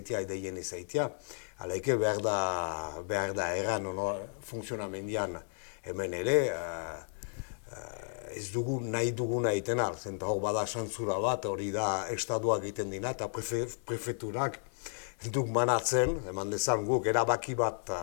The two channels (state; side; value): silent; right; digital silence